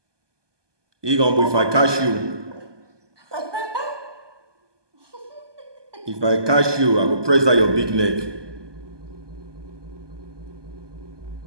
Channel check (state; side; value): late; left; 1.2 ms